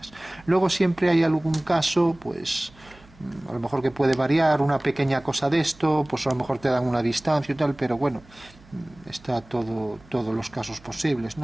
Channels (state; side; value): noise; right; hum, 25 dB below the sound